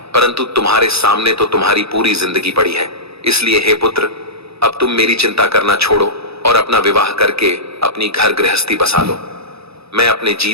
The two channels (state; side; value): late; left; 0.78 ms